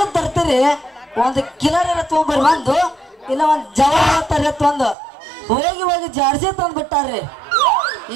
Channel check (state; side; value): drops out; left; at 5.0 s